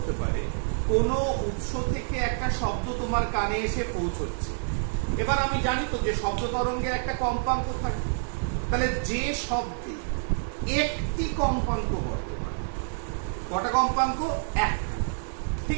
পারে, কোনো উৎস থেকে একটা শব্দ তোমার কানে এসে পৌঁছচ্ছে। এবার আমি জানি তো যে শব্দ তরঙ্গের একটা কম্পাঙ্ক থাকে, তাহলে যে শব্দে একটি কম্পাঙ্ক বর্তমান, কটা কম্পাঙ্ক? একটা,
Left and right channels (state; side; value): silent; left; digital silence